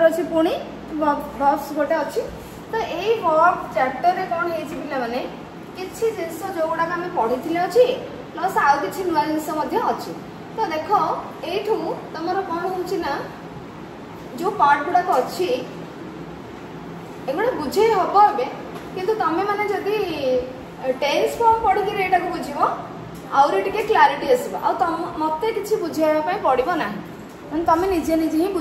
अच्छी पुणी वर्ब्स गोटे अच्छी तो यही वर्ब चैप्टर रे कौन है पिला माने किछि जिंस जो गुडा आम पढ़ी अच्छी प्लस आउ कि नुआ जिनस अच्छी। तो देख यू तुम कौन हो जो पार्ट गुड़ाक अच्छी एगुड़ा बुझे हम ए कि तुम मैंने जदि टेन्स फॉर्म पढ़ी एटा को बुझ आउरी टिके क्लारिटी आसो आ मत कि बुझाई पड़ो ना तुम निजे निजे ही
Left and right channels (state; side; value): identical; both; correlation 1.00